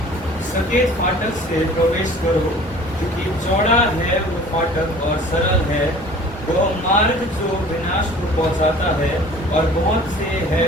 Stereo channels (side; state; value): both; normal; correlation 0.47